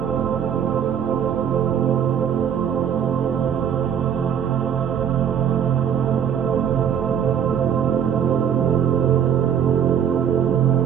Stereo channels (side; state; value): left; quieter; 8.6 dB